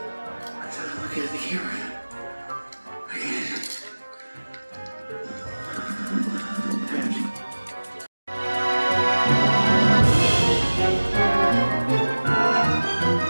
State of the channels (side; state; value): both; inverted; correlation -1.00